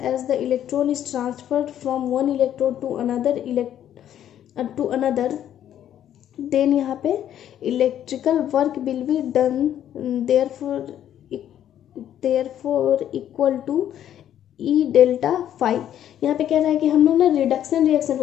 as the electron is transferred from one electrode to another then यहाँ पे electrical work will be done, therefore equal to E delta phi. यहाँ पे कह रहा है कि हम लोग ना रिडक्शन रिएक्शन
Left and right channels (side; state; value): right; quieter; 10.8 dB